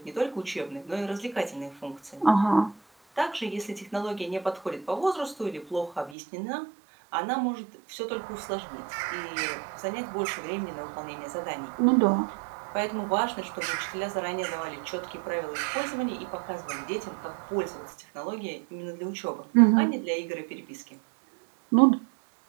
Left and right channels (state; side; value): drops out; left; at 6.2 s